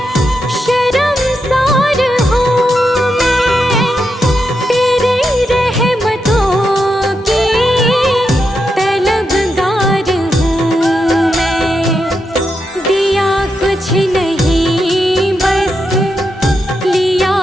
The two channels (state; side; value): normal; both; correlation 0.85